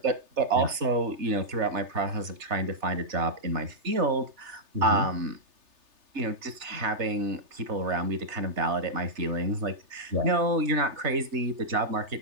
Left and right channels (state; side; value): late; left; 3.3 ms